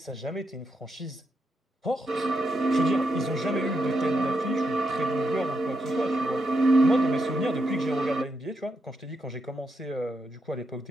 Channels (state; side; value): normal; both; correlation 0.83